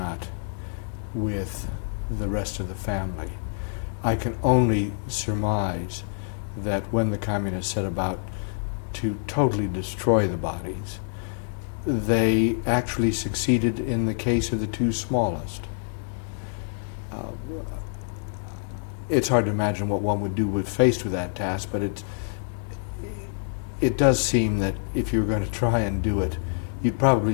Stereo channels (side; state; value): right; silent; digital silence